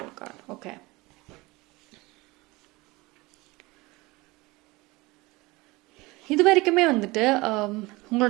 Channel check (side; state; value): left; quieter; 22.5 dB